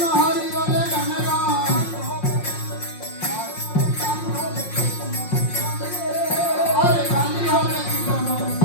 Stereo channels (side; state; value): right; late; 5.6 ms